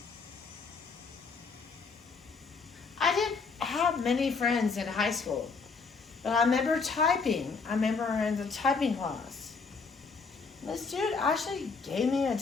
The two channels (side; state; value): right; quieter; 4.8 dB